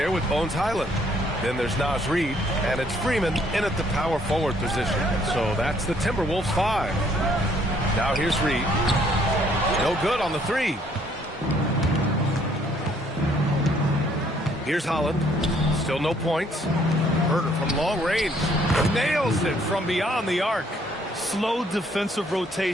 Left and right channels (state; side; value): normal; both; correlation 0.64